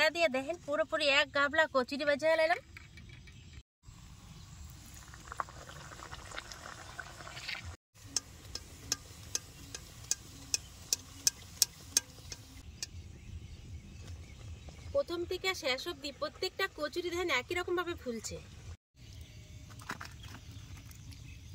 দিয়ে দেখেন পুরোপুরি এক গাবলা কচুরি ভেজে নিলাম। প্রথম থেকে শেষ অবধি প্রত্যেকটা কচুরি দেখেন একই রকম ভাবে ফুলছে।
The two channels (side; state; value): both; identical; correlation 1.00